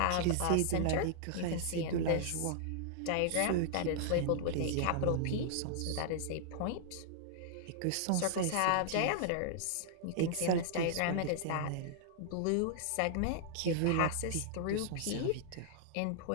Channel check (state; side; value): different; both; correlation -0.01